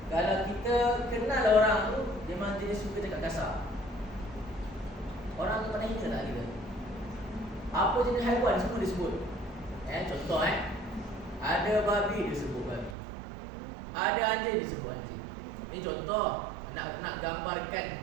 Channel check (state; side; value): drops out; left; at 13.0 s